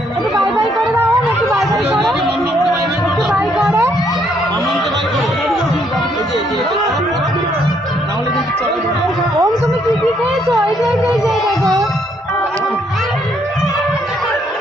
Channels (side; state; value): both; normal; correlation 0.70